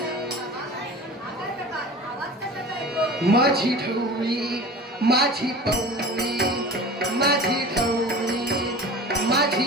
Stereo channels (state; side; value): normal; both; correlation 0.38